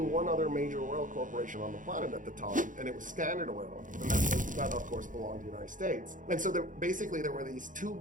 other major oil corporation on the planet at the time, and it was Standard Oil, and that of course belonged to the United States. And so basically there were these two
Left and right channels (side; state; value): left; late; 0.38 ms